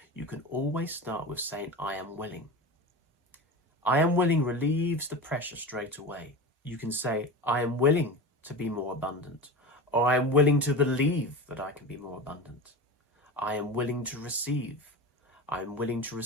you can always start with saying, I am willing. I am willing relieves the pressure straight away. You can say, I am willing to be more abundant, or I am willing to believe that I can be more abundant. I am willing to receive. I am willing to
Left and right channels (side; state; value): both; normal; correlation 0.27